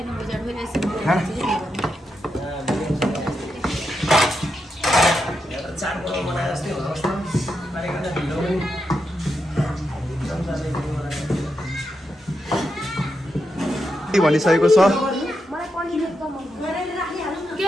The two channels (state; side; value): normal; both; correlation 0.85